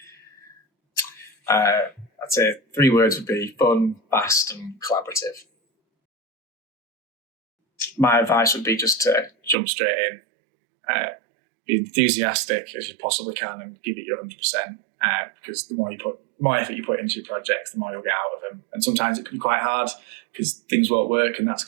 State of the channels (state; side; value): drops out; left; at 9.6 s